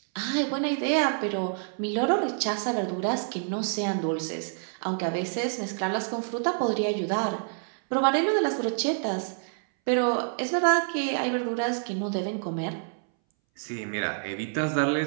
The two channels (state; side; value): silent; left; 60 dB below the other